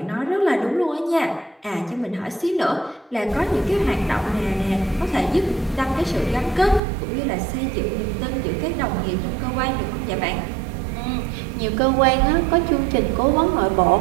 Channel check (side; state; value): left; drops out; at 6.8 s